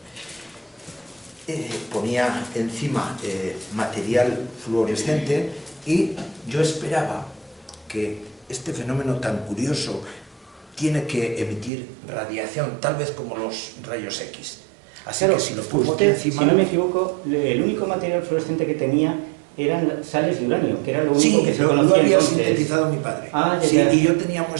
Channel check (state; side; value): drops out; left; at 11.7 s